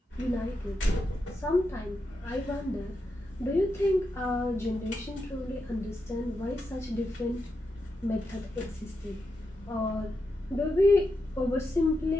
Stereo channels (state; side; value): normal; both; correlation 0.86